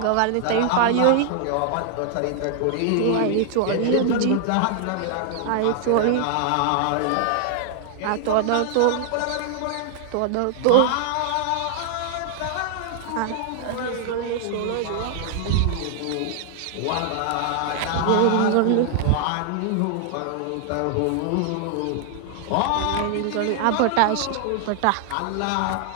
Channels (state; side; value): different; both; correlation 0.00